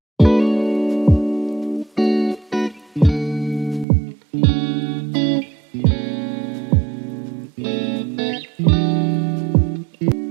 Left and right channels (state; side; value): drops out; left; at 3.9 s